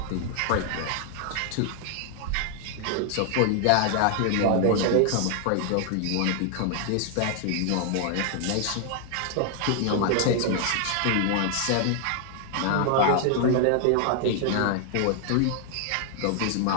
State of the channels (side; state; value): both; different; correlation 0.00